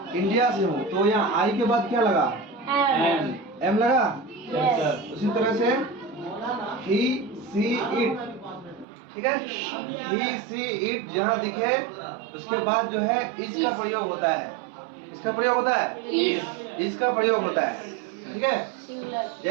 इंडिया से हूँ, तो यहाँ आई के बाद क्या लगा, एम लगा। उसी तरह से ही सी इट, ठीक है। ही सी इट जहाँ दिखे उसके बाद जो है इस का प्रयोग होता है। इसका प्रयोग होता है, इसका प्रयोग होता है, ठीक है।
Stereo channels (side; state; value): left; drops out; at 8.8 s